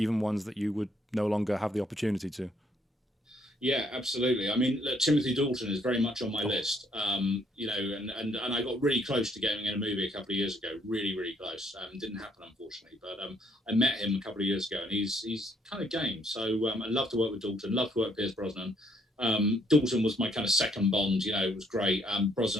ones that you would no longer have the opportunity to. Yeah, absolutely. I mean, look, Timothy Dalton is very much on my list. You know, and I got really close to getting in a movie a couple of years ago. Really, really close. Didn't happen, unfortunately. But I met him a couple of years ago, and he's kind of game. So I love to work with Dalton. Love to work with Pierce Brosnan. Dalton was my kind of second Bond. You know, it was great.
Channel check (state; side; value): normal; both; correlation 0.69